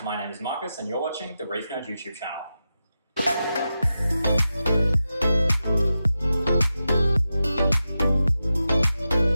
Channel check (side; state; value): both; inverted; correlation -0.90